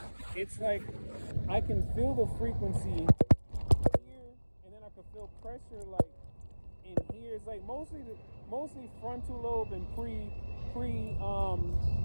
It's like I can feel the frequency here, and then I can feel pressure like in here. It's like mostly frontal lobe and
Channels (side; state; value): both; inverted; correlation -1.00